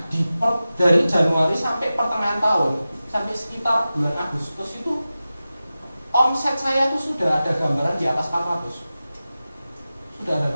dari Januari sampai pertengahan tahun, sampai sekitar bulan Agustus itu omset saya tuh sudah ada gambaran di atas 400. Sudah ada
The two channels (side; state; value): both; inverted; correlation -0.94